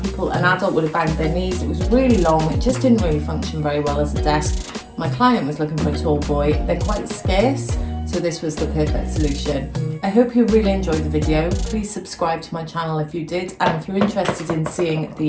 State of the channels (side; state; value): both; identical; correlation 1.00